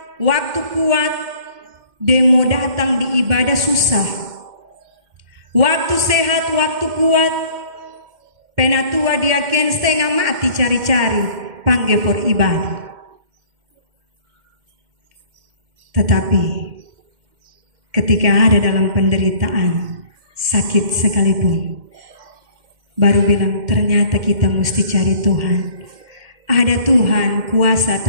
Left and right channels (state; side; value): late; left; 2.1 ms